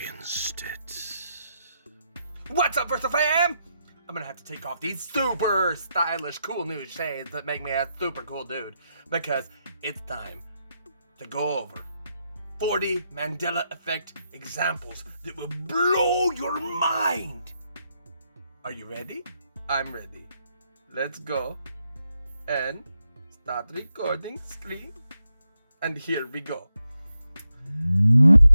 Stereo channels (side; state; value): both; inverted; correlation -0.83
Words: it. What's up, Versifyer? I'm gonna have to take off these super stylish, cool new shades that make me a super cool dude, because it's time to go over 40 Mandela Effect examples that will blow your mind. Are you ready? I'm ready. Let's go and start recording screen. And here we go.